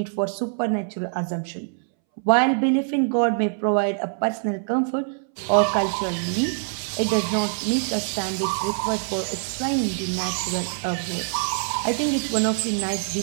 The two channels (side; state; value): left; silent; 62 dB below the other